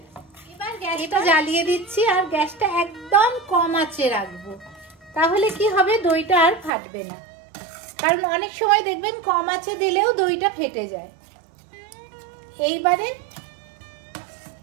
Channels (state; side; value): drops out; left; at 6.7 s